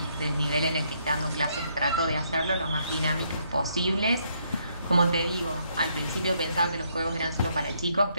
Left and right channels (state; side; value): inverted; both; correlation -0.72